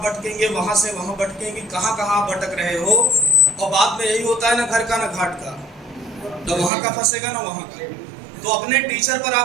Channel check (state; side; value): drops out; left; at 6.7 s